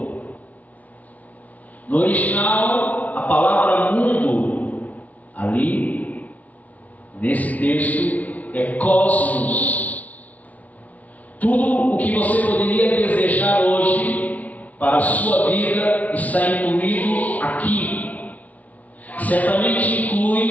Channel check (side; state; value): right; late; 0.071 ms